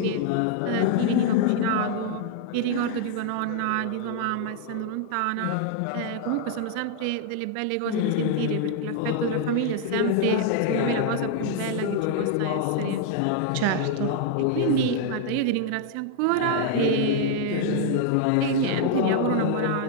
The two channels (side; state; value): both; different; correlation 0.00